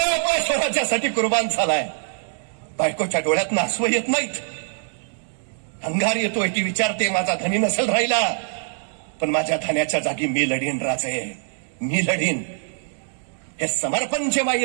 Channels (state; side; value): silent; left; digital silence